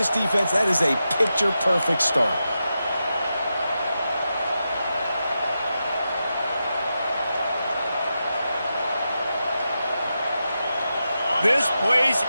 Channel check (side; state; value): both; inverted; correlation -0.89